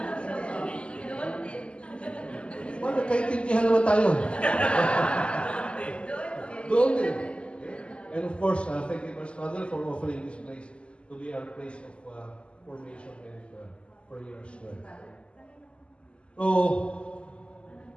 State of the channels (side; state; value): right; late; 0.054 ms